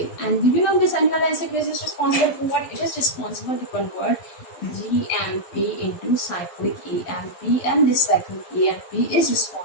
And do you know this adenylyl cyclase is responsible for what? It is responsible to convert GMP into cyclic AMP, and this cyclic AMP is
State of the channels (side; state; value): right; late; 12 ms